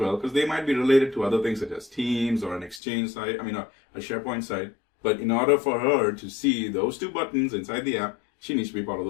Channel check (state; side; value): drops out; right; at 2.8 s